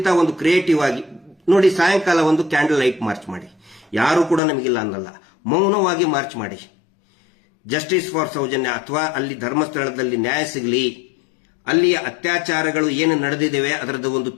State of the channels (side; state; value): right; drops out; at 4.4 s